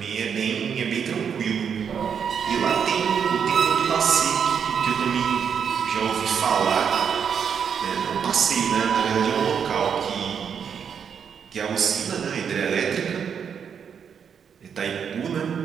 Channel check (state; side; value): quieter; left; 7.3 dB